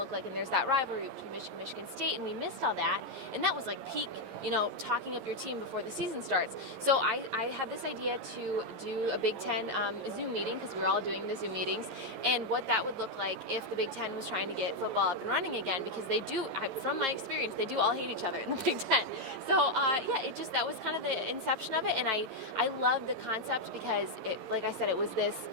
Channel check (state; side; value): late; left; 11 ms